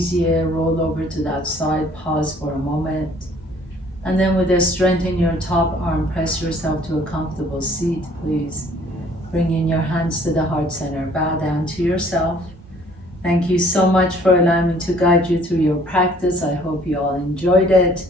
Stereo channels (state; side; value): normal; both; correlation 0.57